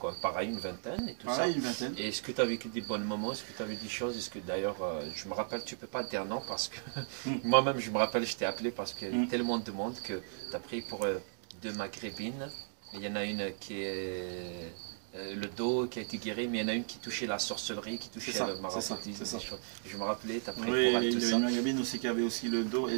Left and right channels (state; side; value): silent; left; digital silence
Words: pareil, une vingtaine et tout ça. Une vingtaine. Et est-ce que tu as vécu des bons moments? Est-ce que tu avais des choses? Est-ce que d'ailleurs, je me rappelle, tu ne peux pas dire non parce que moi-même, je me rappelle, je t'ai appelé parce qu'il y a tellement de monde que tu as pris pour 2 maghrébines. Il y en a une qui est. Le dos qui a été guéri, mais il y en a une qui touchait la sorcellerie, qui touchait le maraboutisme. Je me rappelais, tu as pris pour elle tout ça. Il y a une maghrébine aussi qui avait aussi le dos, elle